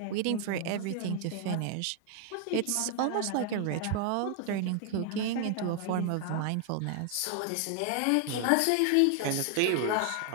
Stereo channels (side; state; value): both; different; correlation 0.00